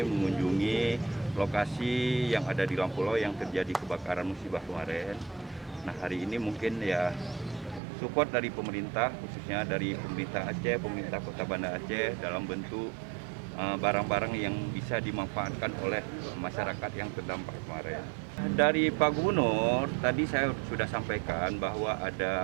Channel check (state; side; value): drops out; left; at 7.8 s